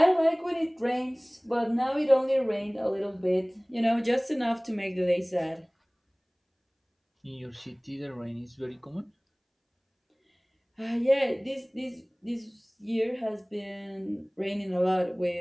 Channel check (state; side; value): identical; both; correlation 1.00